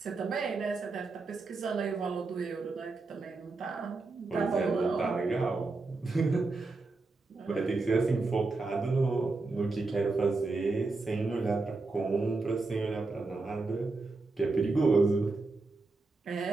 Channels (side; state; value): left; quieter; 3.6 dB